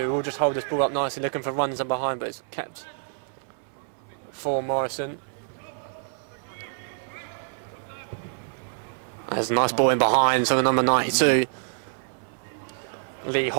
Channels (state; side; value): silent; left; 60 dB below the other